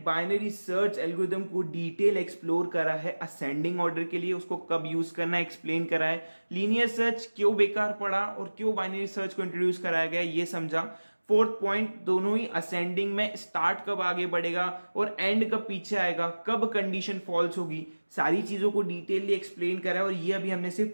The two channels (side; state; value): both; inverted; correlation -1.00